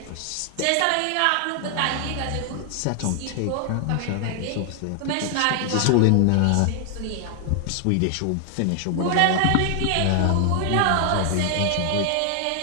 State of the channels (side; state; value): both; different; correlation 0.00